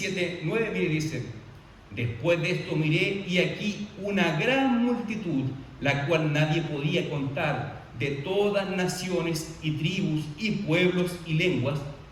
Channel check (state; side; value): identical; both; correlation 1.00